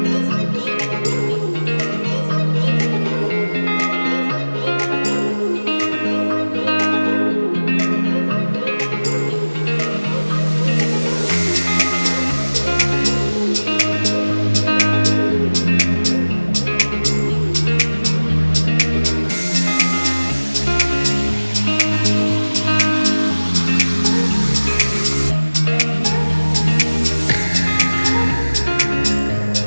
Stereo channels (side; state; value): both; inverted; correlation -1.00